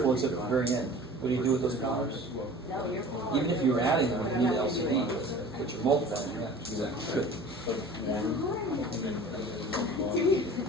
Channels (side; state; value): both; normal; correlation 0.43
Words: except at the very end. What do you do with those powers? Even if you're adding them, you need the LCD, but you're multiplying. Yeah, exactly. Good.